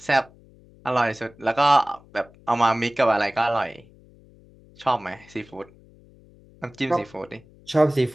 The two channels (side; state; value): left; noise; hum, 26 dB below the sound